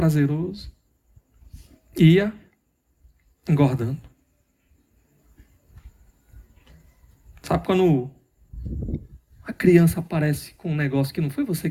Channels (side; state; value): both; identical; correlation 1.00